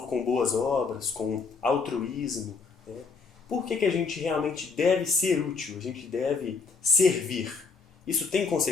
com boas obras, com altruísmo, né? Por que a gente realmente deve ser útil? A gente deve servir. Isso tem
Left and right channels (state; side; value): quieter; right; 4.8 dB